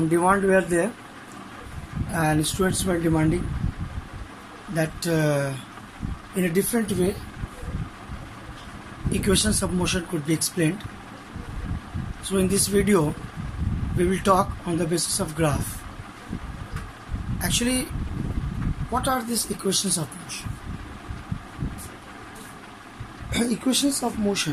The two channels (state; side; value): identical; both; correlation 1.00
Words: demand were there, and students were demanding that in a different way equations of motion could be explained. So in this video we will talk on the basis of graph. Actually, what are these equations of motion? Equations of